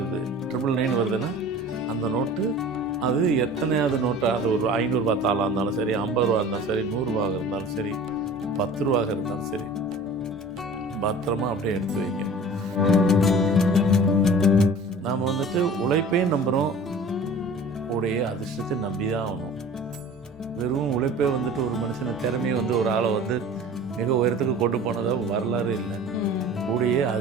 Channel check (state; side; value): normal; both; correlation 0.42